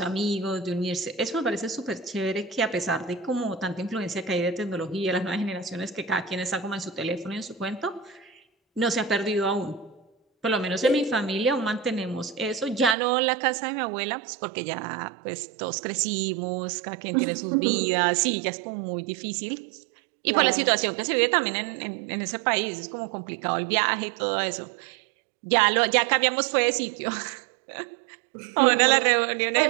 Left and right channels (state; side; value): drops out; left; at 13.0 s